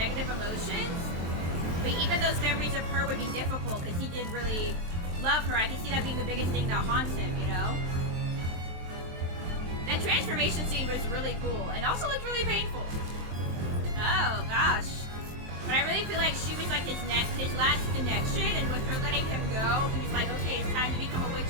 emotions. But even those memories of her would be difficult because he did really love her. I can see that being the biggest thing that haunts him, you know? That transformation scene was really cool and also looked really painful. Oh, gosh. But I really feel like she was like his last connection, and with her letting him go, he was like, okay, it's time to become a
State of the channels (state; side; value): late; left; 23 ms